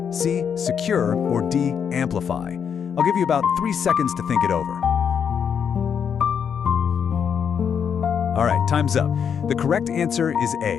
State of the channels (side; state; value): right; quieter; 7.4 dB